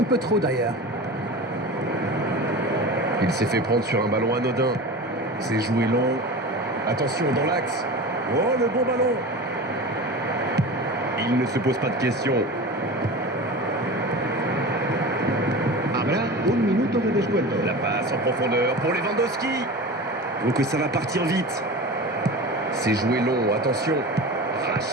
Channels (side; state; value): both; normal; correlation 0.31